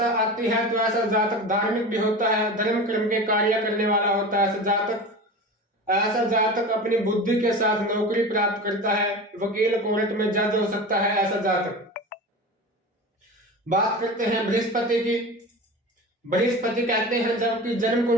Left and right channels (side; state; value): both; normal; correlation 0.31